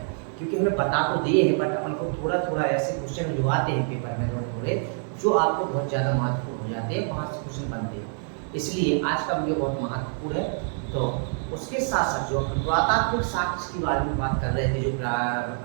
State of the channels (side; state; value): left; silent; 55 dB below the other